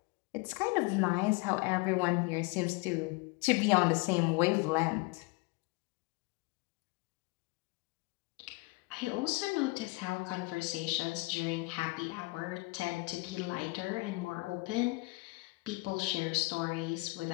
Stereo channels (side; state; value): right; quieter; 25.6 dB